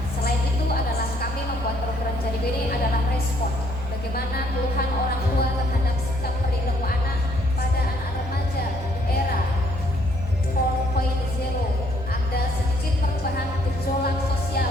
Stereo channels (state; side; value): noise; right; hum, 11 dB below the sound